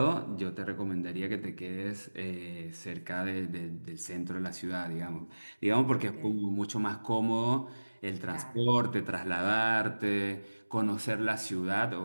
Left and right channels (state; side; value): inverted; both; correlation -1.00